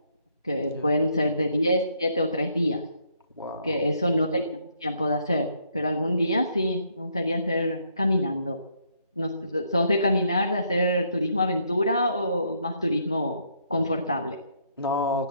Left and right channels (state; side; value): inverted; both; correlation -0.71